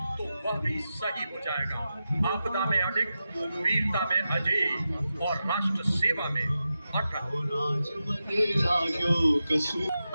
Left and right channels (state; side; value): inverted; both; correlation -0.91